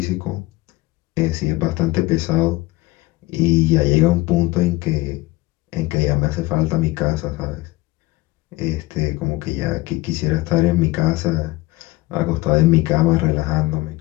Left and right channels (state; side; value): quieter; right; 19.7 dB